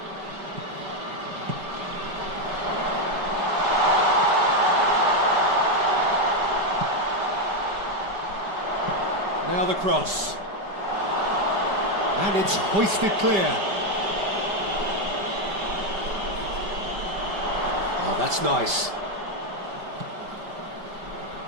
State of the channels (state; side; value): late; left; 5.1 ms